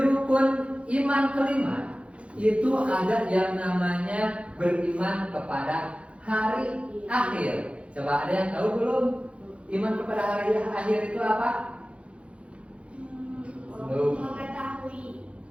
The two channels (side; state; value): left; late; 0.061 ms